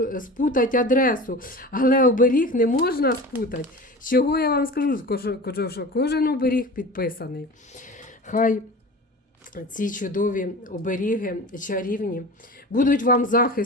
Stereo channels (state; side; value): normal; both; correlation 0.34